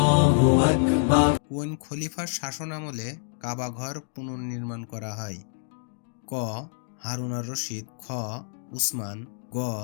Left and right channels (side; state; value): right; silent; digital silence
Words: কোন খলিফার শাসনামলে কাবা ঘর পুনর্নির্মাণ করা হয়? ক. হারুন আর রশিদ, খ. উসমান, গ.